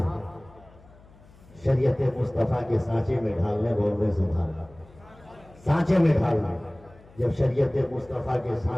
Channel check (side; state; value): left; noise; hum, 25 dB below the sound